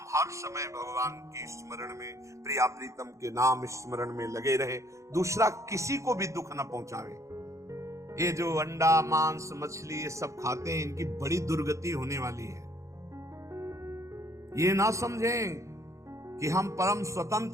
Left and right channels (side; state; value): left; late; 0.15 ms